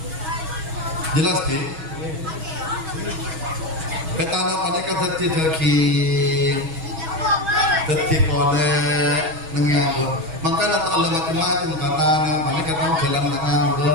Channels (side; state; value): left; late; 6.2 ms